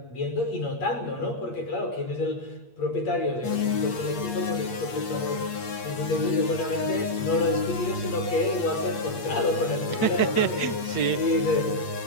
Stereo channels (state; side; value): late; right; 8.5 ms